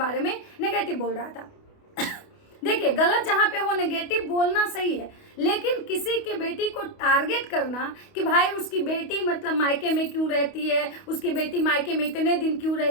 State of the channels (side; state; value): right; late; 28 ms